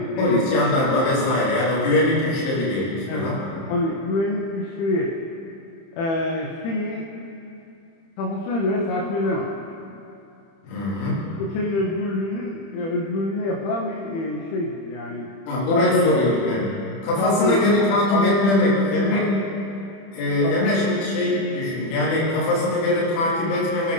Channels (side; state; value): right; late; 30 ms